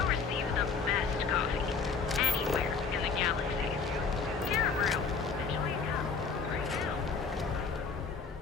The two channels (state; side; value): quieter; right; 4.9 dB